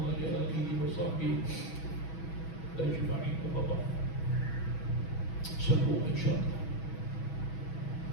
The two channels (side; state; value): right; late; 6.2 ms